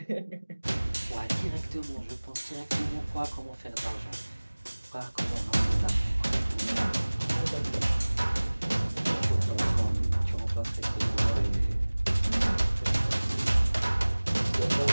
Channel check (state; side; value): inverted; both; correlation -1.00